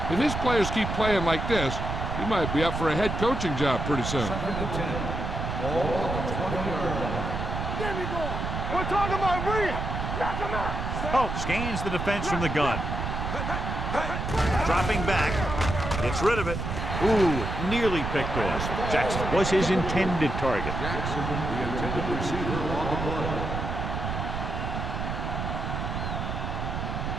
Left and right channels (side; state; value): right; noise; rumble, 3 dB below the sound